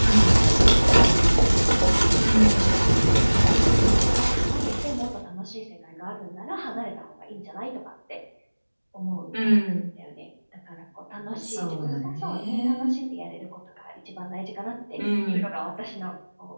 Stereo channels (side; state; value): both; inverted; correlation -1.00